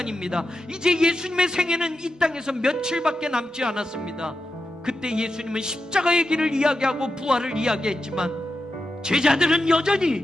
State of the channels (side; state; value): both; normal; correlation 0.89